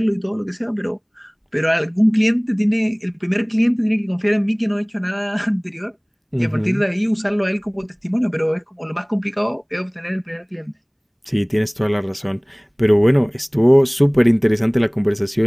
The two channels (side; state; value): both; identical; correlation 1.00